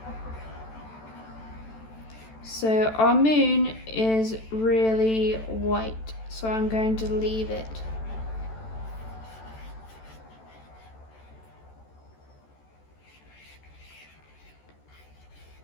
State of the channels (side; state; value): right; late; 14 ms